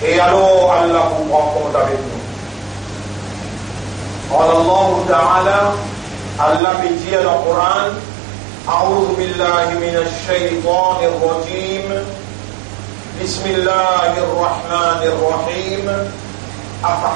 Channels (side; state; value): left; drops out; at 6.6 s